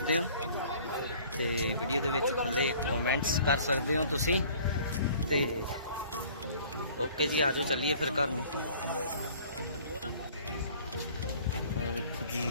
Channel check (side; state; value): both; inverted; correlation -0.51